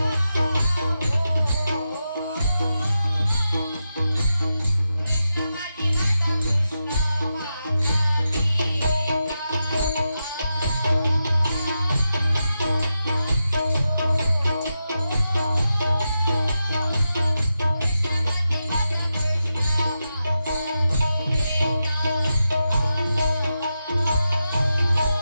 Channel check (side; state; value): both; inverted; correlation -0.89